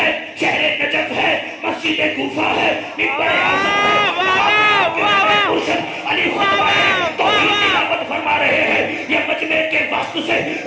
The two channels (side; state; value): both; identical; correlation 1.00